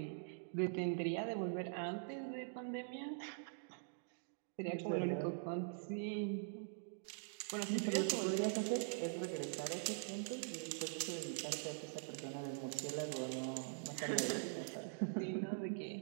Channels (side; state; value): left; silent; digital silence